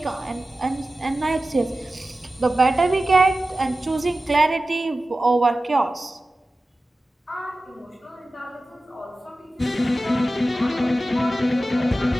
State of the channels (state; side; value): normal; both; correlation 0.95